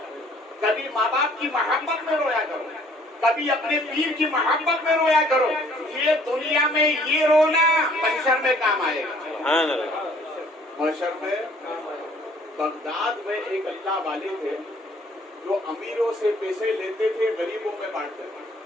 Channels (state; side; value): normal; both; correlation 0.58